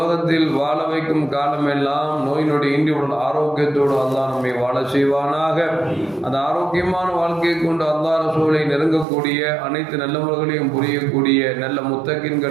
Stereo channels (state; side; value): drops out; left; at 9.1 s